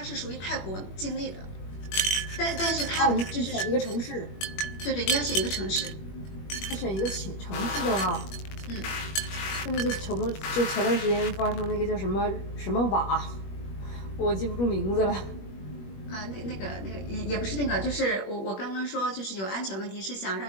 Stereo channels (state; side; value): late; right; 21 ms